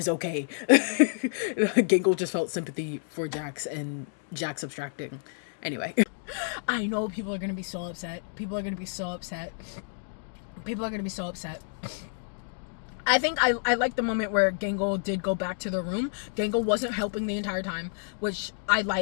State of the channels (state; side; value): silent; right; digital silence